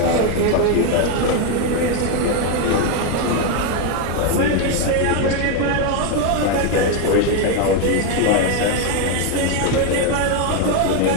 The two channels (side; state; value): both; different; correlation 0.01